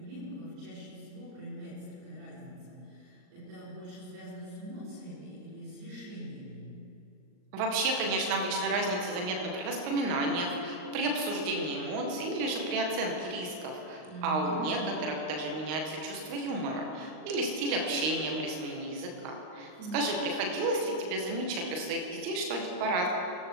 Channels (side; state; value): left; late; 39 ms